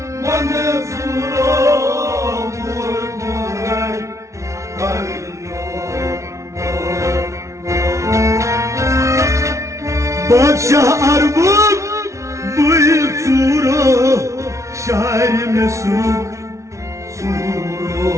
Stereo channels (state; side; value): late; left; 0.14 ms